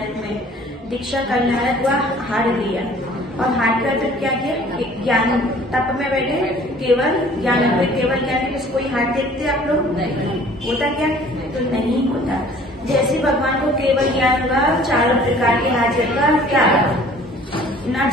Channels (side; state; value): both; normal; correlation 0.52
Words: में दीक्षा कल्याणक हुआ, हार लिया, और हार कर फिर क्या किया? ज्ञान तप में बैठे, केवल ज्ञान हुए। केवल ज्ञान में कोई हार देखते आप लोग? होता क्या? तो नहीं होता। जैसे भगवान को केवल ज्ञान हुआ, 4 प्रकार के हाजर का क्या ना